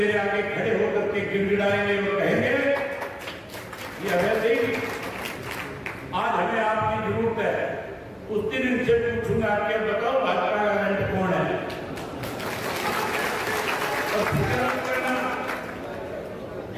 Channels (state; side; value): identical; both; correlation 1.00